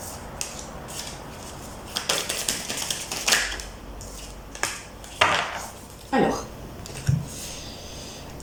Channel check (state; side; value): identical; both; correlation 1.00